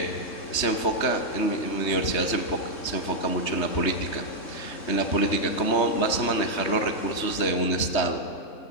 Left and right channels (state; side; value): late; right; 3.2 ms